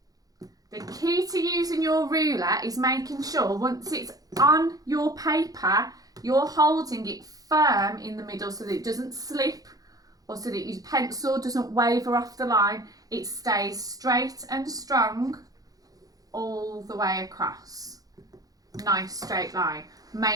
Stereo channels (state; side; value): late; left; 0.18 ms